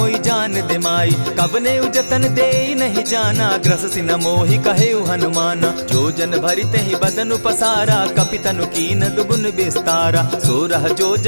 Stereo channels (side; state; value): both; inverted; correlation -1.00